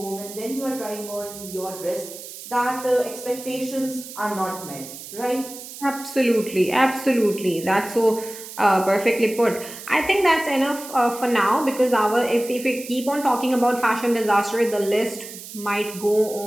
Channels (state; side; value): noise; right; hiss, 13 dB below the sound